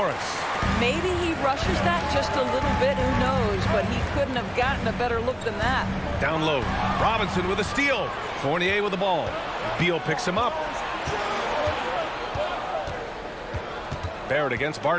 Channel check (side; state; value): both; identical; correlation 1.00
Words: Maybe he rushes that just a little bit, who knows, but he couldn't have gotten a better look than that. Down low. Robinson with a steal. Fournier with the ball. Beal picks him up. Barrett against